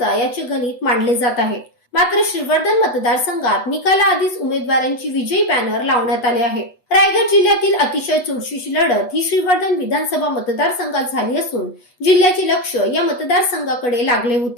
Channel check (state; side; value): late; right; 8.2 ms